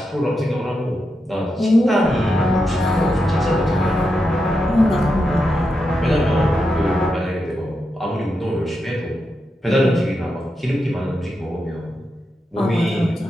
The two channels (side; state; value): both; normal; correlation 0.86